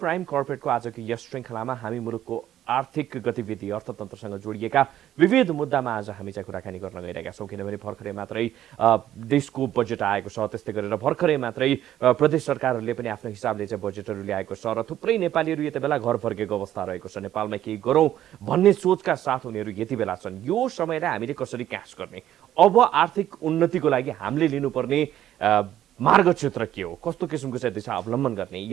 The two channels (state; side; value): quieter; left; 12.0 dB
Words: कर्पोरेटको आजको यस श्रृङ्खलामा हामी मुलुकको आर्थिक गतिविधि अर्थतन्त्रसँग जोडिएका विविध मुद्दामा आज हामी चाहिँ कुराकानी गर्न गइरहेका छौँ। किनभने भर्खरै मात्रै देशको बजेट आएको छ, त्यस्तै गरेर भर्खरै मात्रै प्रदेश सरकारहरूले पनि आफ्नो हिसाबले चाहिँ बजेटहरू ल्याएको छ र थुप्रै नेपालीहरू यति बेला घर फर्केको अवस्था रहेको छ। नेपालमा केही गरौँ भन्ने सोचका साथ उनीहरू यति बेला छन्। यो समयलाई हामीले कसरी क्याच गर्ने, अब आर्थिक उन्नतिको लागि हामीले लिनुपर्ने मार्ग क्षेत्र के हो, कस्तो किसिमको चाहिँ दिशा अवलम्बन गर्ने,